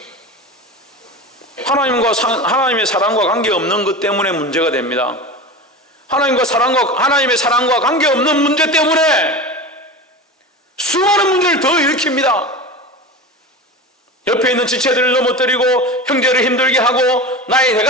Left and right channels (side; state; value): both; normal; correlation 0.28